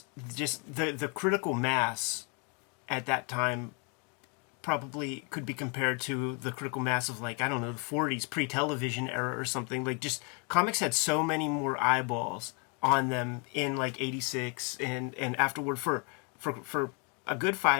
just the critical mass at that time probably could be compared to the critical mass of, like, I don't know, the 40s, pre-television era or something. Like, just comics had so many more eyeballs on them in like 86 and afterward for a good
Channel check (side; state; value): right; quieter; 35.1 dB